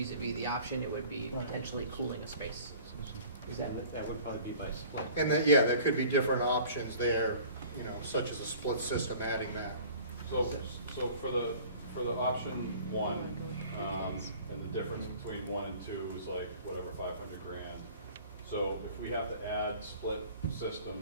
the option. It would be potentially cooling a space. That would probably be by split. And then, there could be different options there, such as a split system adding that. So for the option 1, and the difference between 1 and 2 is like whatever, 500 grand. So if we have to add split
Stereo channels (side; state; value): both; inverted; correlation -0.47